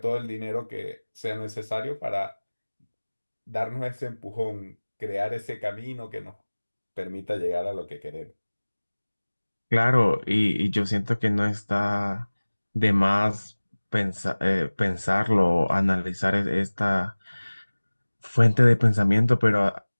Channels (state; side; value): inverted; both; correlation -1.00